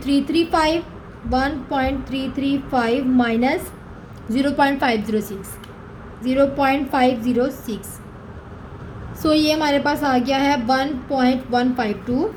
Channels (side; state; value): both; identical; correlation 1.00